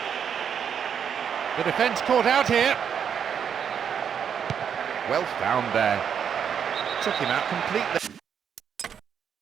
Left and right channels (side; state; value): left; quieter; 7.8 dB